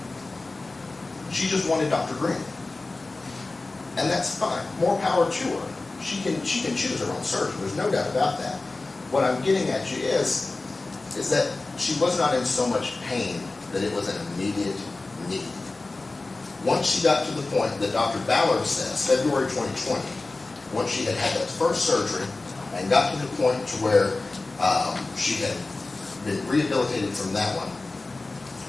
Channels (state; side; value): quieter; right; 3.3 dB